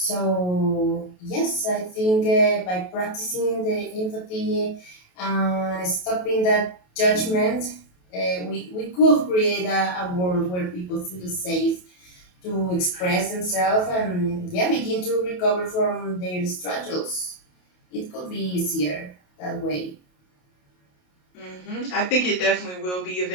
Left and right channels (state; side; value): late; right; 28 ms